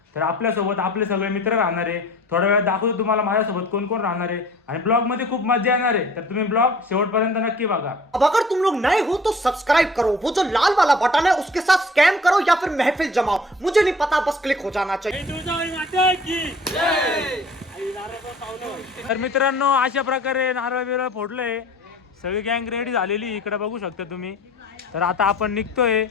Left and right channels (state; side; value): normal; both; correlation 0.48